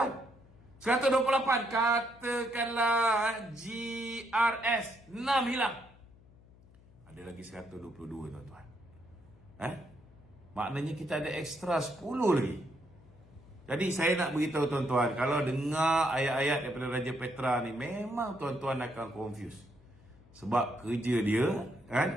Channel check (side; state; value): left; noise; hum, 24 dB below the sound